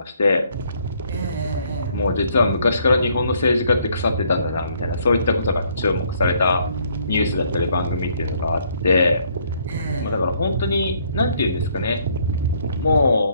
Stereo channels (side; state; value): both; inverted; correlation -0.66